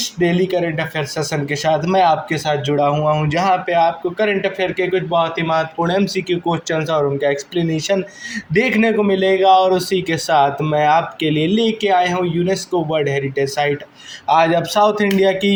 डेली करंट अफेयर सेशन के साथ मैं आपके साथ जुड़ा हुआ हूं, जहां पे आपको करंट अफेयर के कुछ बहुत ही महत्वपूर्ण एमसीक्यू क्वेश्चंस और उनका एक्सप्लेनेशन देखने को मिलेगा। और उसी के साथ मैं आपके लिए लेके आया हूं यूनेस्को वर्ल्ड हेरिटेज साइट। आज आप साउथ इंडिया की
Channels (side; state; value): both; identical; correlation 1.00